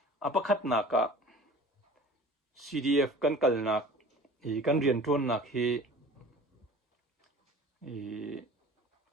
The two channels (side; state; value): both; normal; correlation 0.43